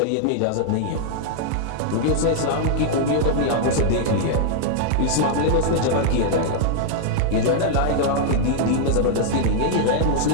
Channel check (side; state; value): both; different; correlation -0.01